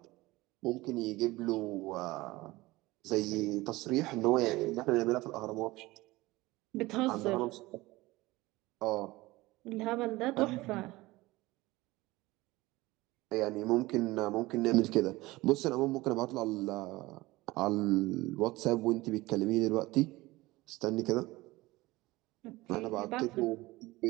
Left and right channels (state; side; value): quieter; left; 19.9 dB